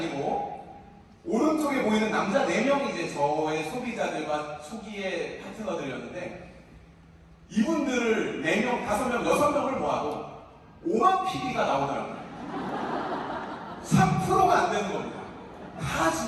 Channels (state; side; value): identical; both; correlation 1.00